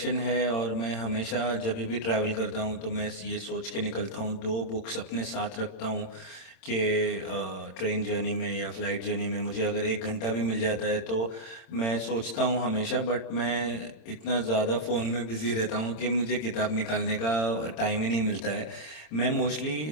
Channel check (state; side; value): late; right; 26 ms